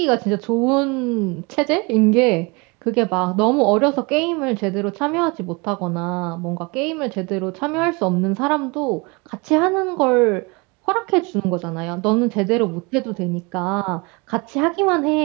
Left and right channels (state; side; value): quieter; left; 27.6 dB